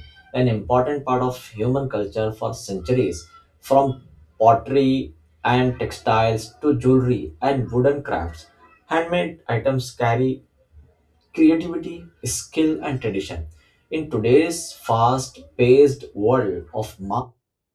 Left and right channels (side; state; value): both; identical; correlation 1.00